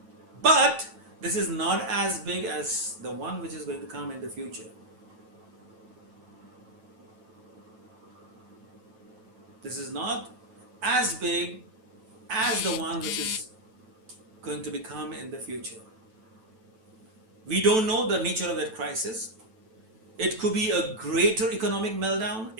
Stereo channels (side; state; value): left; late; 9.1 ms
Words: But this is not as big as the one which is going to come in the future. This is not as big as the one which is going to become in the future. We don't know the nature of that crisis. It could be a greater economic meltdown.